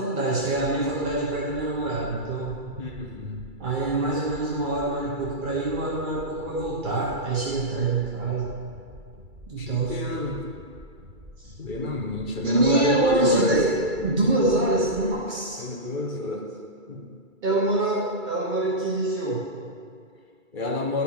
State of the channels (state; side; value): late; left; 2.3 ms